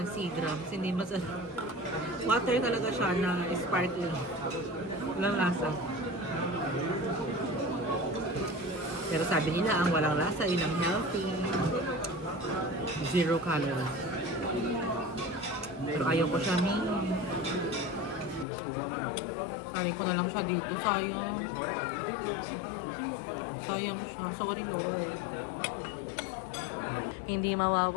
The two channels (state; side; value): drops out; right; at 18.4 s